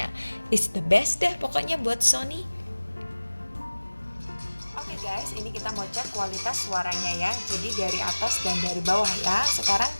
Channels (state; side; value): inverted; both; correlation -1.00